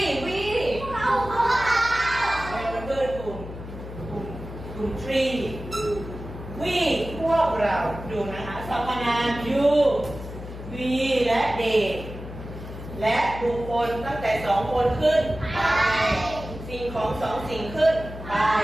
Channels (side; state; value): left; noise; hum, 11 dB below the sound